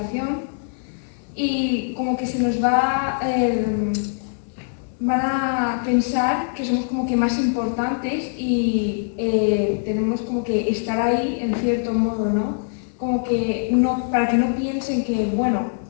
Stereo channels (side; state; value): right; silent; digital silence